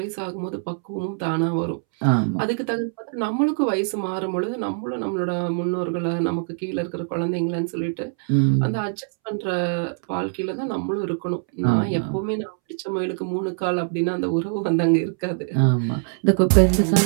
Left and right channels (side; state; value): left; silent; 63 dB below the other